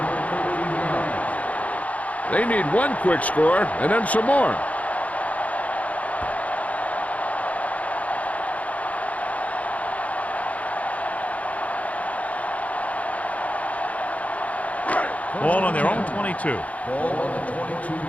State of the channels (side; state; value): right; late; 0.069 ms